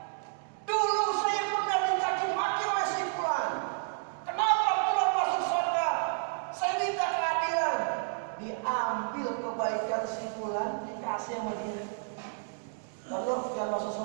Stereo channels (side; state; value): left; silent; digital silence